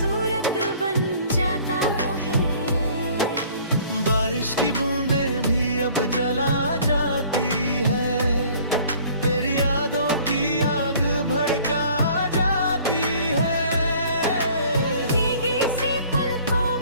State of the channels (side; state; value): both; inverted; correlation -0.53